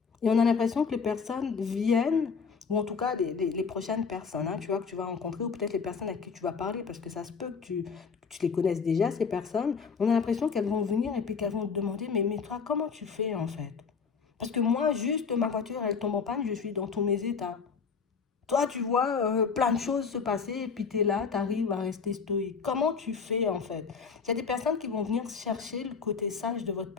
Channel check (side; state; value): right; quieter; 5.7 dB